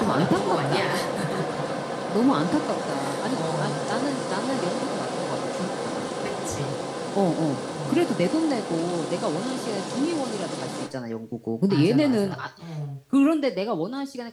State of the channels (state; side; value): identical; both; correlation 1.00